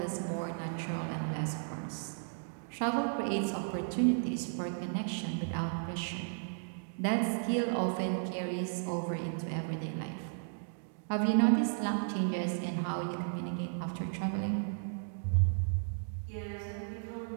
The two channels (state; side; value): silent; left; digital silence